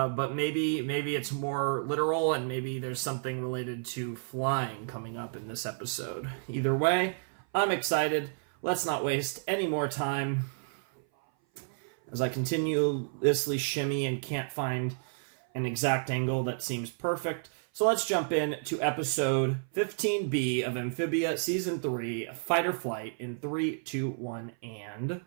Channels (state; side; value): silent; left; 56 dB below the other